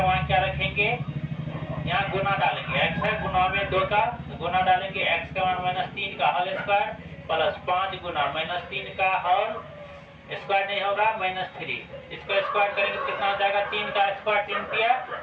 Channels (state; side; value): identical; both; correlation 1.00